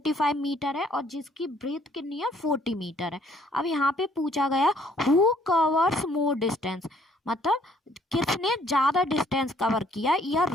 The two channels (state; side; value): normal; both; correlation 0.63